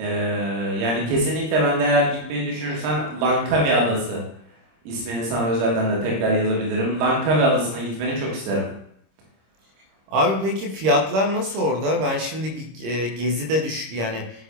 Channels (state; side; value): late; left; 26 ms